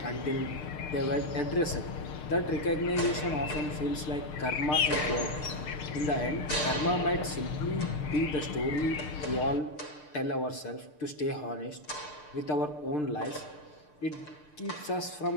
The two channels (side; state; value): right; late; 6.7 ms